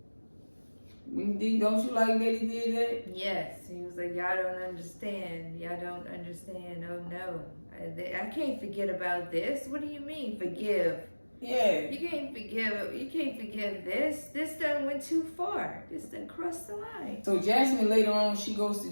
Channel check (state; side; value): inverted; both; correlation -1.00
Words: it. Don't you like that he did that? Yes. He was like, y'all don't understand. Y'all don't understand. Oh, no. I can't forget about this. What do you mean, forgive? Yeah. You can't forgive this. This done went too far. This done crossed the line. So Jasmine later on, she goes to